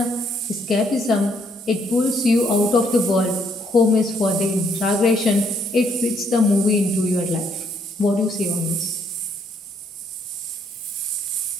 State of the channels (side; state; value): both; normal; correlation 0.70